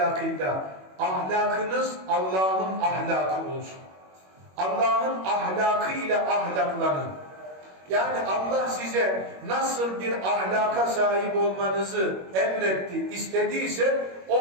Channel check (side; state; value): left; late; 21 ms